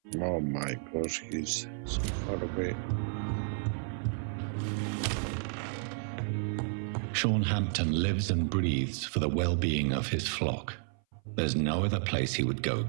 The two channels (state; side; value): silent; left; 57 dB below the other